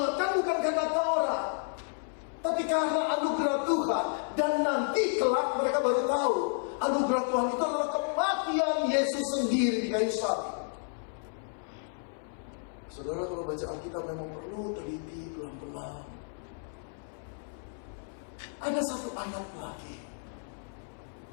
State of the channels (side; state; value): right; silent; 57 dB below the other